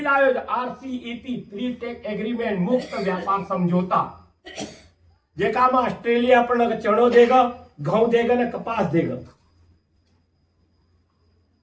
आयो आरसीईपी फ्री टेक एग्रीमेंट मुक्त व्यापार समझौता जेका में ऑस्ट्रेलिया अपन चणो देगा घऊ देगा न कपास देगा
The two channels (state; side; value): identical; both; correlation 1.00